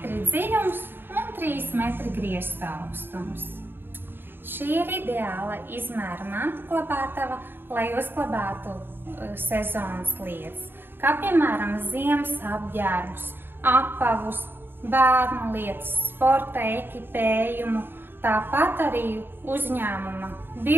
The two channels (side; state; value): left; late; 0.10 ms